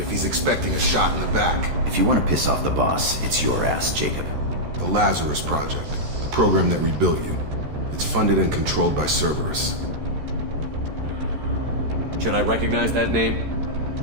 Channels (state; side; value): late; left; 14 ms